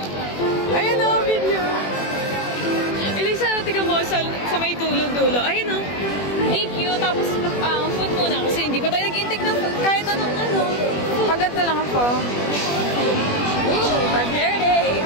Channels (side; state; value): right; late; 21 ms